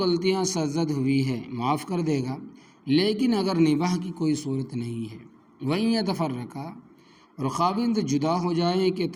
سرزد ہوئی ہے معاف کر دے گا، لیکن اگر نباہ کی کوئی صورت نہیں ہے، وَإِن يَتَفَرَّقَا، اور خاوند جدا ہو جائیں کہ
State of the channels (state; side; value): identical; both; correlation 1.00